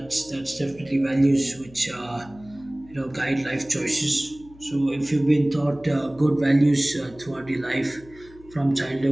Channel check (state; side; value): noise; left; hum, 23 dB below the sound